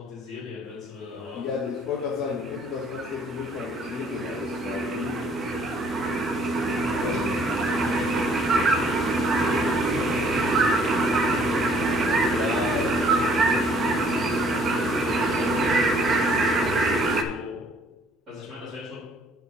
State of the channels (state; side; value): normal; both; correlation 0.60